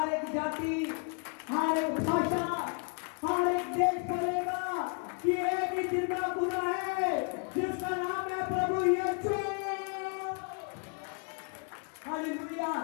एक जाति, हर एक भाषा, हर एक देश बोलेगा कि एक ही जिंदा खुदा है जिसका नाम है प्रभु यीशु। हालेलुया।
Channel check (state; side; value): quieter; right; 37.0 dB